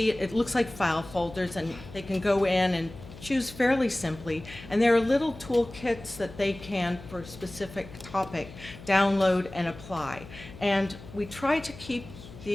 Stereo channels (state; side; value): noise; left; hum, 16 dB below the sound